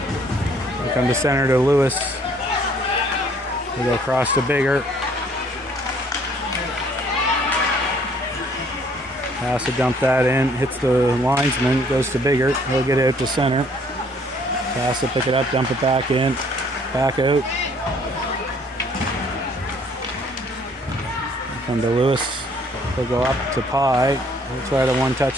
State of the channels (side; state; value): both; normal; correlation 0.61